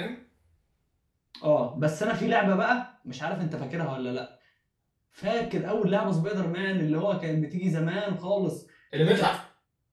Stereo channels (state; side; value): identical; both; correlation 1.00